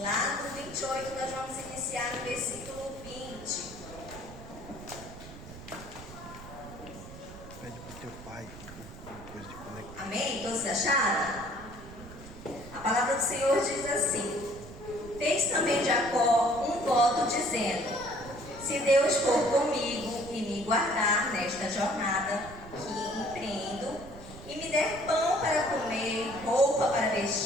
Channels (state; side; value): noise; right; rumble, 15 dB below the sound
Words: no 28 nós vamos iniciar no versículo 20. Pede pro teu pai uma coisa de conectar. Amém? Todos acharam? A palavra do Senhor diz assim: fez também Jacó um voto dizendo: se Deus for comigo e me guardar nesta jornada que empreendo, e me der pão para comer, roupa para